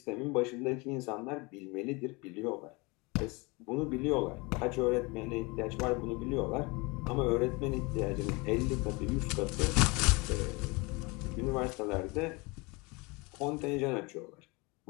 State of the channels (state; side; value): quieter; right; 26.8 dB